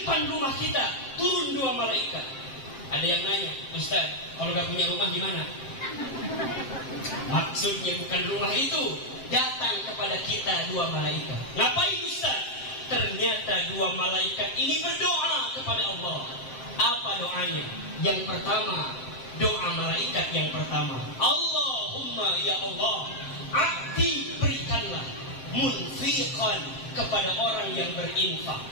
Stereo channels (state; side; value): late; right; 7.6 ms